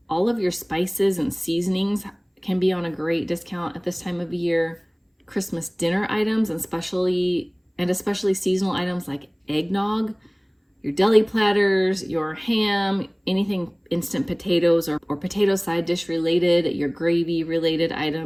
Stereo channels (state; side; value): identical; both; correlation 1.00